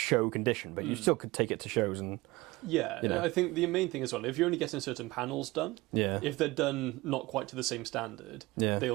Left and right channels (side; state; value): left; quieter; 21.0 dB